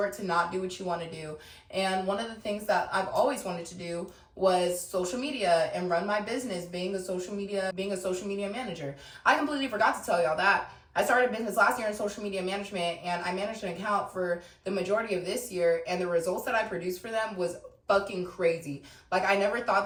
to not do what you want to do. And one of the things that I've always wanted to do was social media and run my business, being a social media manager. I completely forgot to tell y'all that. I started business last year in social media management, and I managed an account for the majority of this year, and the results that I produced for them was fucking crazy. Like, I never thought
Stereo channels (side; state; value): both; identical; correlation 1.00